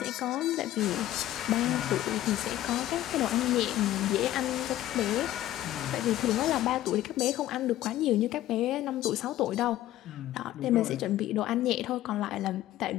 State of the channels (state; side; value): quieter; right; 13.9 dB